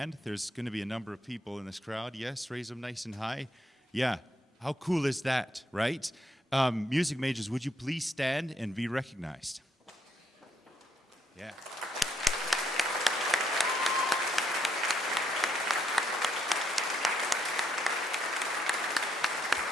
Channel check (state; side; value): normal; both; correlation 0.74